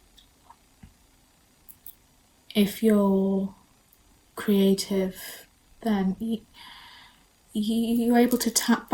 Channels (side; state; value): both; identical; correlation 1.00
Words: if you're creative, then you're able to tap